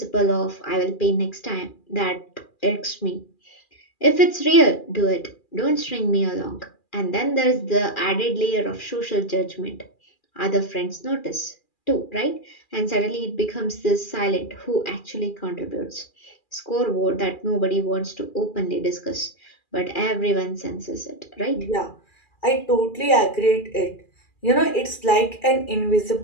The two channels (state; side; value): late; right; 2.4 ms